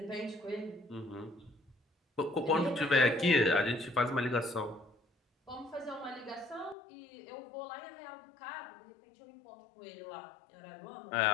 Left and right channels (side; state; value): right; drops out; at 6.8 s